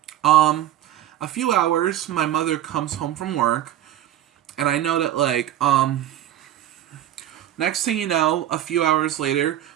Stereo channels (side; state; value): left; quieter; 12.4 dB